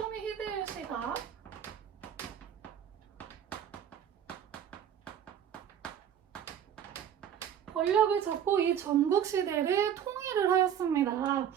히데요시가 권력을 잡고 이 전국 시대를 통일을 하였습니다.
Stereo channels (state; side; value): quieter; left; 9.2 dB